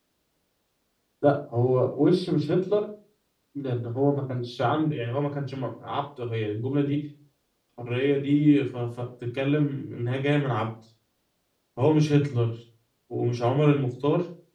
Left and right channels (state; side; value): identical; both; correlation 1.00